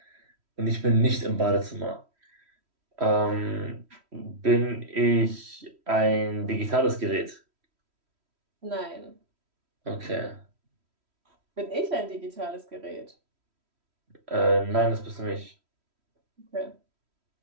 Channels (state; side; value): late; left; 3.1 ms